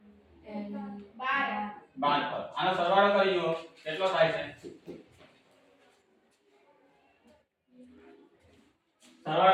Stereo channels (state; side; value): identical; both; correlation 1.00